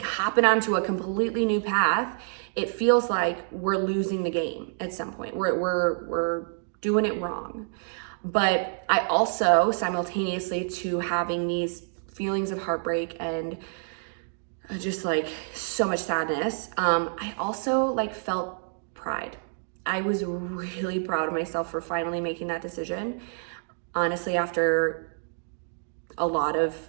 hopping onto a completely new path. It feels like we're losing the game at some point. We're doing it wrong. But I also, simultaneously to having these feelings of heartbreak and just like so much sadness, I also like felt pride. I was really proud of myself for finally making that decision. Honestly, after a lot of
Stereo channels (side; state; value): left; silent; digital silence